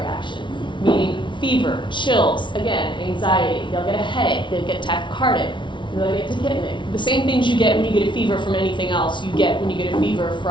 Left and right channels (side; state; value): right; late; 0.24 ms